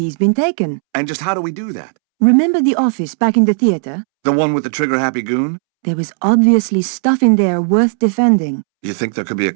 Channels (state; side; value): silent; left; 70 dB below the other